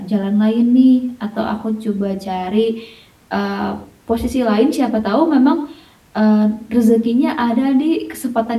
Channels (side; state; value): both; identical; correlation 1.00